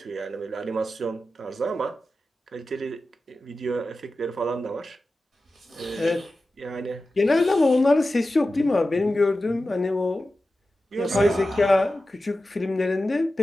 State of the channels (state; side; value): normal; both; correlation 0.93